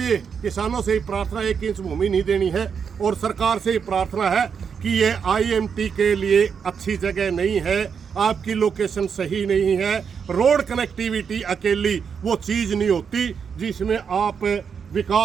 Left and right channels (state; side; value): quieter; left; 6.6 dB